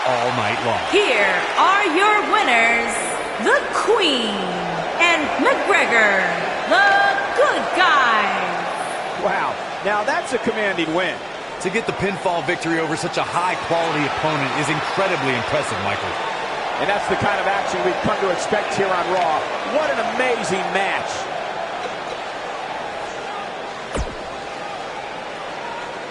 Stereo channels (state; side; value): identical; both; correlation 1.00